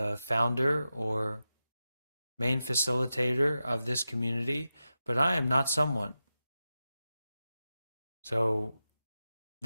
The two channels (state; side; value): inverted; both; correlation -0.91